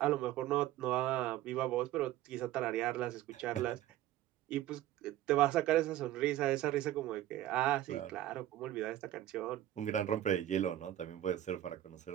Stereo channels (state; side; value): quieter; left; 13.4 dB